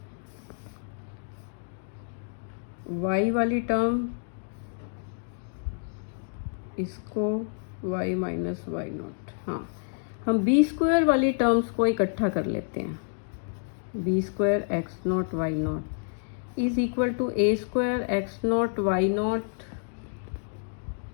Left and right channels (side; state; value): right; silent; digital silence